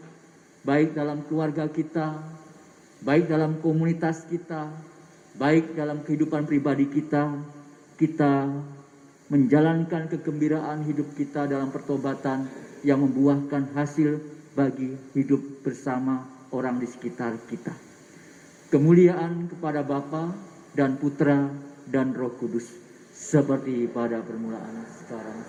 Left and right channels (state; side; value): identical; both; correlation 1.00